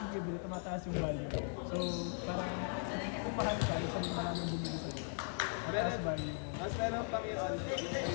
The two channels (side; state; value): right; silent; 52 dB below the other